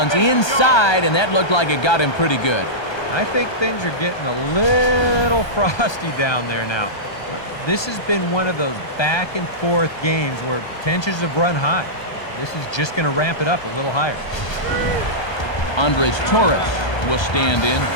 inside, and that looked like it got him pretty good. I think things are getting a little frosty down there now. This has been one of those back and forth games where tensions have run high. This is just going to ramp it up a little higher. Andres Torres will stand in.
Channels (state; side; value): late; right; 1.3 ms